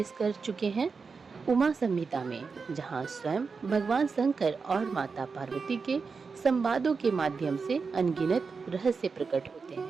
कर चुके हैं उमा संहिता में, जहां स्वयं भगवान शंकर और माता पार्वती के संवादों के माध्यम से अनगिनत रहस्य प्रकट होते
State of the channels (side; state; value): left; quieter; 5.0 dB